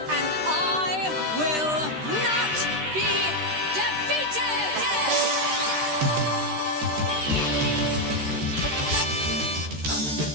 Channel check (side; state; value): left; late; 13 ms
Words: and I will not be defeated!